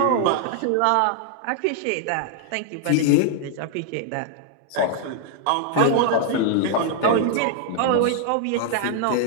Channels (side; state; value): both; different; correlation 0.00